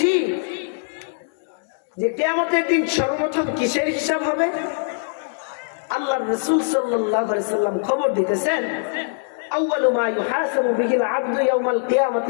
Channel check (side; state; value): right; silent; digital silence